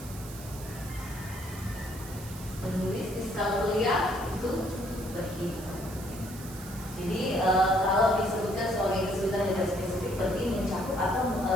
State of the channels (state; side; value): noise; right; hiss, 15 dB below the sound